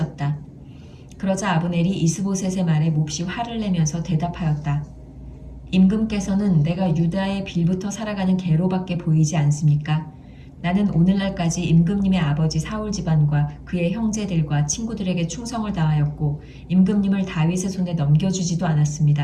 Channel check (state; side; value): identical; both; correlation 1.00